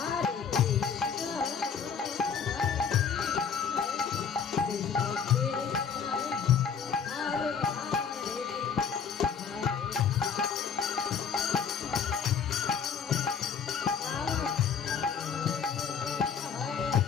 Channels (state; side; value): quieter; right; 6.6 dB